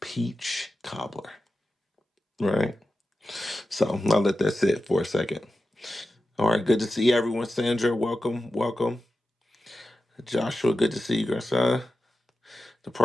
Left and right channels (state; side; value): normal; both; correlation 0.92